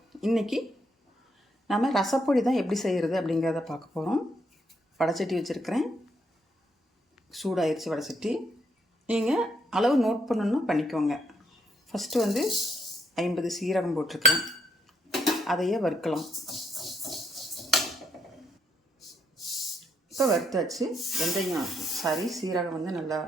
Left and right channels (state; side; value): normal; both; correlation 0.74